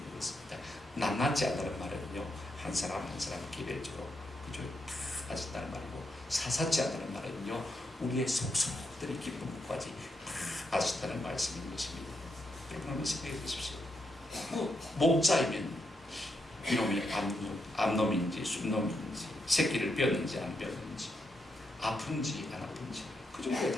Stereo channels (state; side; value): normal; both; correlation 0.82